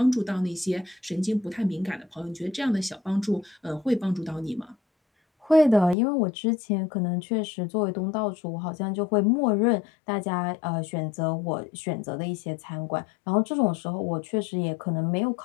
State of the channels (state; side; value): drops out; right; at 6.0 s